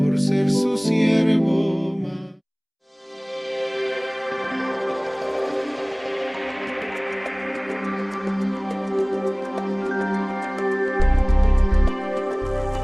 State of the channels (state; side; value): identical; both; correlation 1.00